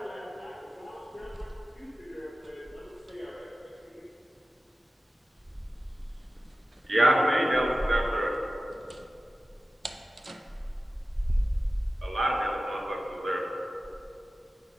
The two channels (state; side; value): normal; both; correlation 0.95